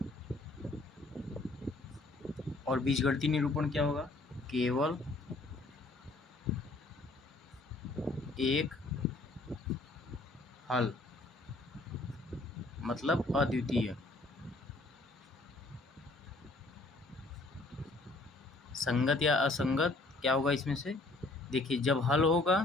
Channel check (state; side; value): quieter; right; 3.0 dB